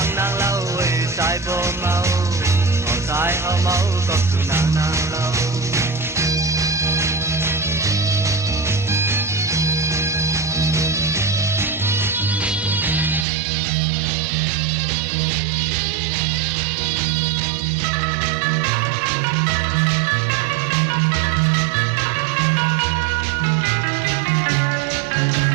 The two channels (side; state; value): left; drops out; at 13.2 s